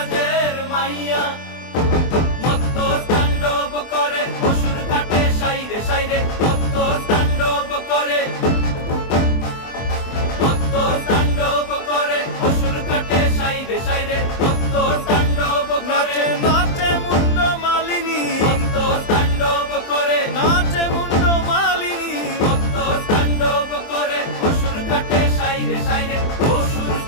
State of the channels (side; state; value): right; late; 23 ms